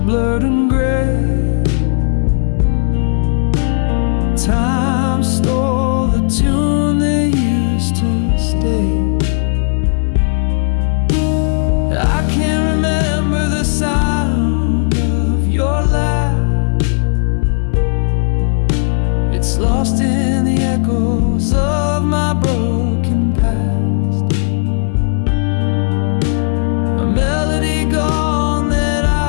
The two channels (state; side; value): silent; right; digital silence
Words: and gray. Time stole the tune that used to stay. I can't remember the sound of your laugh. It's lost in the echoes of my broken past. A melody gone that